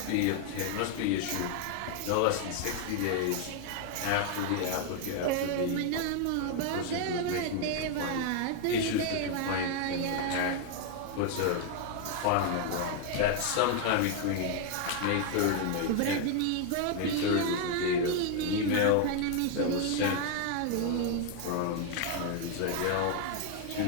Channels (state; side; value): different; both; correlation 0.01